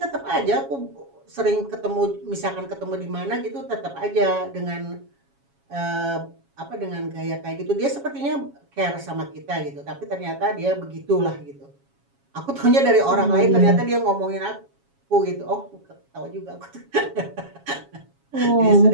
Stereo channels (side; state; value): left; late; 7.3 ms